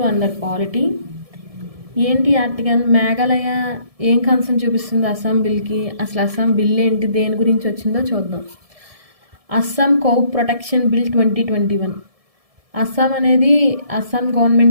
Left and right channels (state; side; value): late; left; 1.7 ms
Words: under polity. ఏంటి ఆర్టికల్? మేఘాలయ ఏం కన్సర్న్ చూపిస్తుంది అస్సాం బిల్కి, అసలు అస్సాం బిల్ ఏంటి, దేని గురించి వచ్చిందో చూద్దాం. Assam cow protection bill 2021. Assam